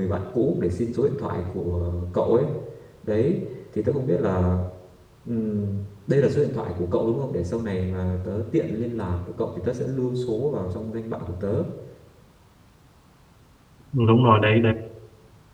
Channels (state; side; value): identical; both; correlation 1.00